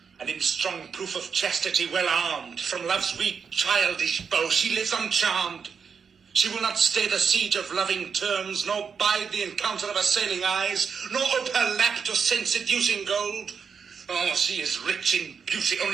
and in strong proof of chastity well armed. From love's weak childish bow she lives uncharmed. She will not stay the siege of loving terms, nor bide the encounter of assailing eyes, nor ope her lap to sense-seducing gold. Oh, she is rich in beauty,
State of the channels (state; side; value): quieter; left; 6.2 dB